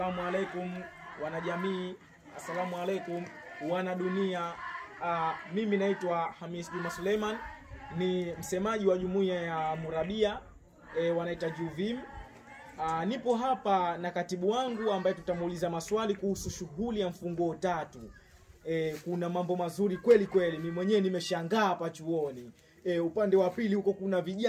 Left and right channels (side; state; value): both; identical; correlation 1.00